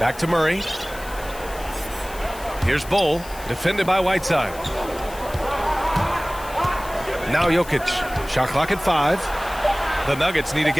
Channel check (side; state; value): left; noise; hiss, 17 dB below the sound